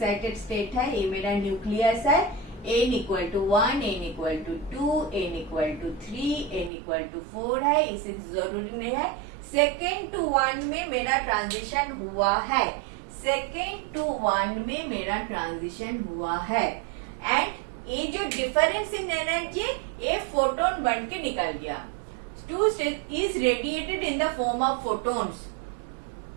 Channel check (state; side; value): drops out; left; at 6.7 s